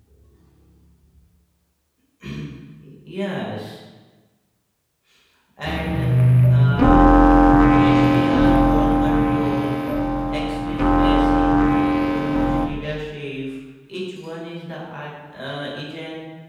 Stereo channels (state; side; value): identical; both; correlation 1.00